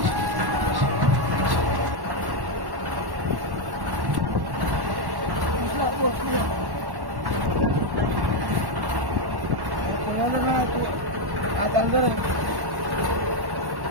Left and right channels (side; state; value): left; late; 1.1 ms